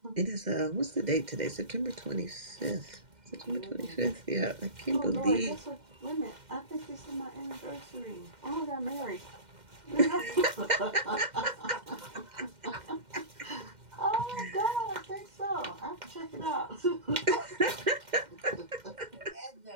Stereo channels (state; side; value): late; left; 2.1 ms